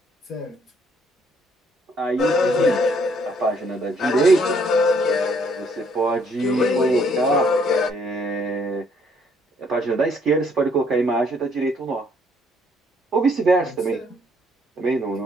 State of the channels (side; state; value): both; normal; correlation 0.66